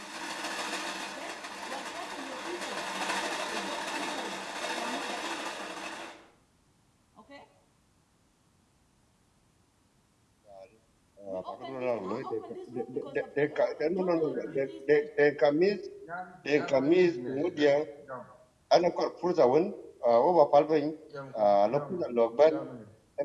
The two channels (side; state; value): both; identical; correlation 1.00